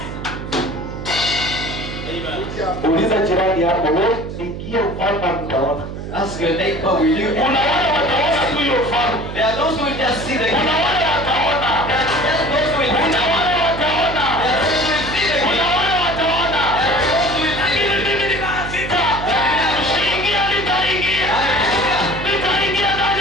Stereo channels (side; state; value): right; noise; hum, 8 dB below the sound